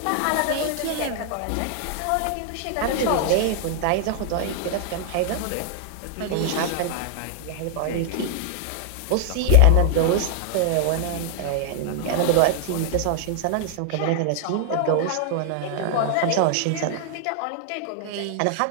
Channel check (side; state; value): both; different; correlation 0.00